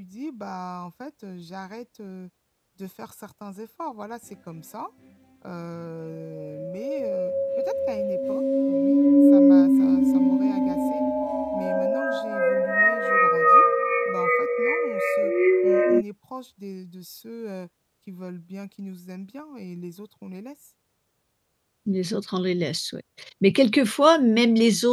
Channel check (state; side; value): identical; both; correlation 1.00